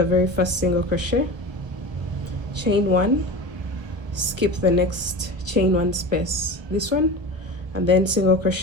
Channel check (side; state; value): left; late; 1.1 ms